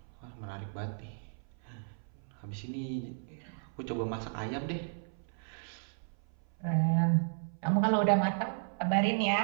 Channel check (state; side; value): silent; left; 55 dB below the other